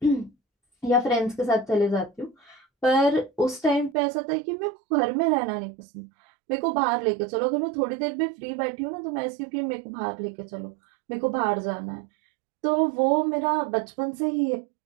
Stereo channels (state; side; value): drops out; left; at 4.0 s